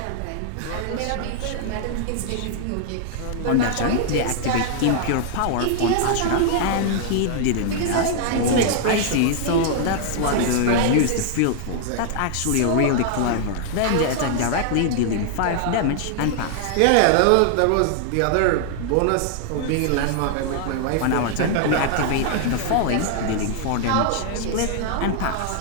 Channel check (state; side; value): different; both; correlation -0.01